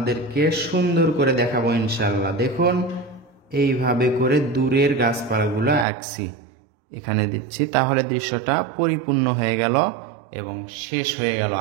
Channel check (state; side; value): drops out; left; at 5.9 s